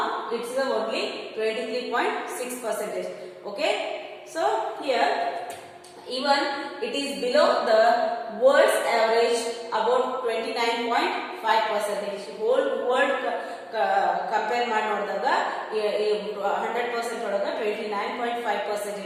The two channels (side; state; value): both; identical; correlation 1.00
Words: it's only 23.6%. Okay, so here even it is below the world's average about 29.5%. whole world compare ಮಾಡಿ ನೋಡಿದಾಗ 100% ಒಳಗ